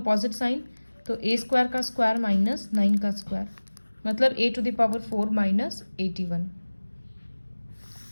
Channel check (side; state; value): both; inverted; correlation -1.00